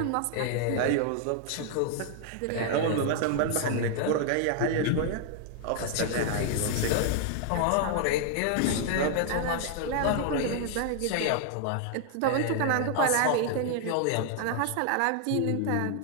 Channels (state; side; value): different; both; correlation 0.00